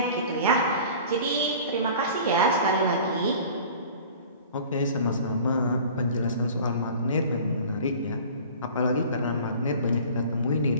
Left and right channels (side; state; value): both; inverted; correlation -0.43